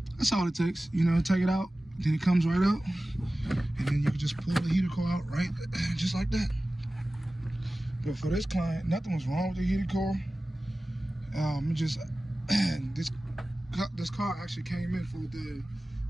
that's all it takes. You know, take it out, then it comes right out, and then you can just pull the heater core out right just like that. But for this client, nothing was wrong with the heater core. This car actually came in for the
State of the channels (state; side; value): normal; both; correlation 0.96